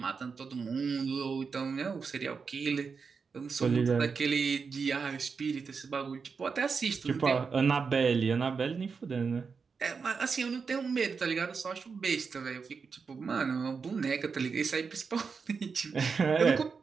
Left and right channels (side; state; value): left; quieter; 5.3 dB